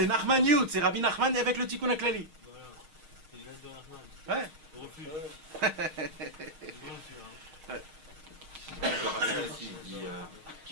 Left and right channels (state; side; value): late; left; 6.4 ms